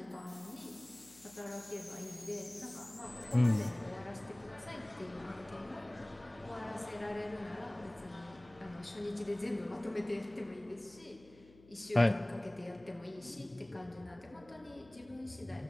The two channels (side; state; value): left; noise; hum, 23 dB below the sound